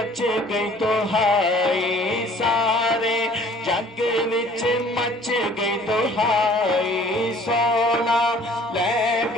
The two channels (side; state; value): both; normal; correlation 0.53